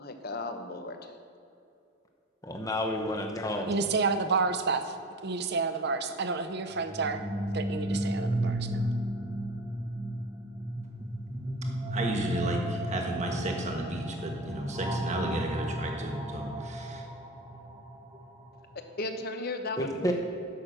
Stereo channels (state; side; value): normal; both; correlation 0.33